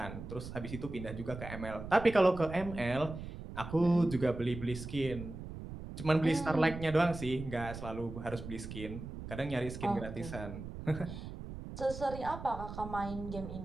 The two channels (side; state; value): right; noise; rumble, 10 dB below the sound